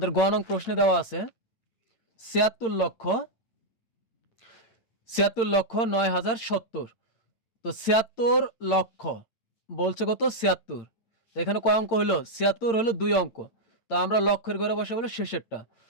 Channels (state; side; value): late; right; 8.8 ms